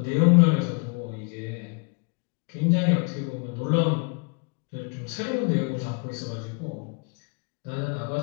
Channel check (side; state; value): right; quieter; 34.4 dB